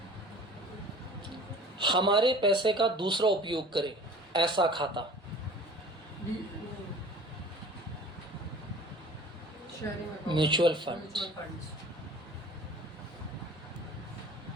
हमारे पैसे का दूसरा उपयोग करे, ऐसा खाता, म्यूचुअल फंड।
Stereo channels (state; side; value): normal; both; correlation 0.44